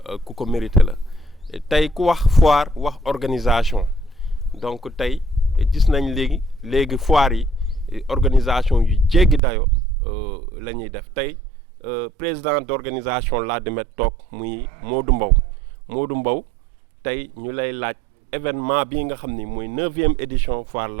ku ko mérité la tey ku wax foire wax organisation donc tey gis nañ léegi foire yi organisation yu jéggi dayo la ñuy def tey président d'organisation Ladoumène toog muy Modou Mbow tey ñu lay laaj événement bii nga xam ni mooy 9e édition foire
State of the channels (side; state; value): left; drops out; at 9.4 s